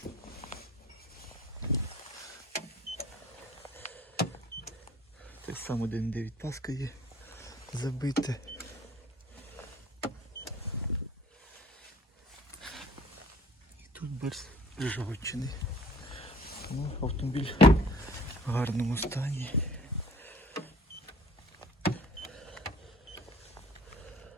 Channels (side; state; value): both; normal; correlation 0.51